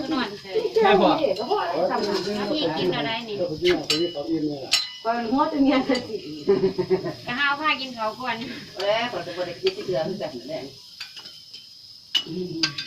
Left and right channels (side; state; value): both; identical; correlation 1.00